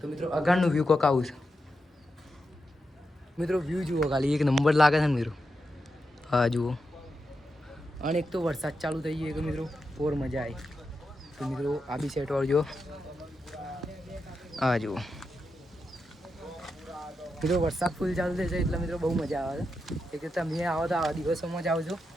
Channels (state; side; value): normal; both; correlation 0.87